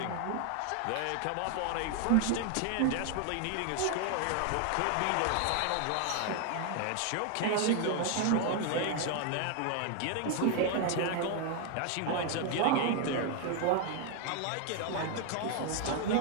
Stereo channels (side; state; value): both; different; correlation 0.00